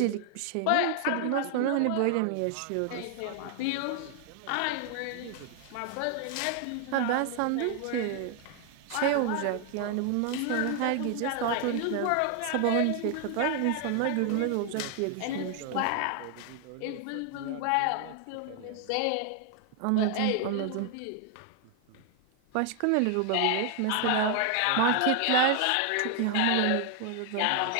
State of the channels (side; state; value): both; different; correlation 0.00